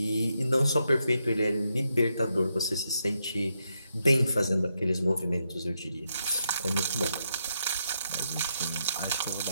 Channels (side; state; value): both; inverted; correlation -0.82